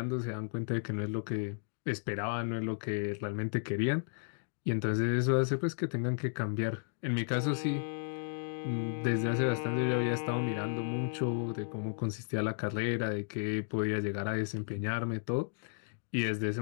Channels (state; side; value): silent; right; digital silence